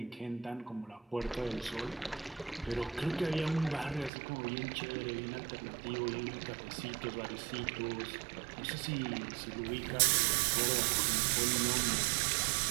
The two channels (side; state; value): left; drops out; at 4.1 s